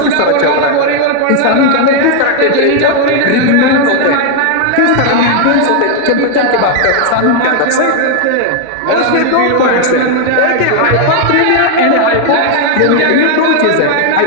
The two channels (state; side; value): different; both; correlation 0.00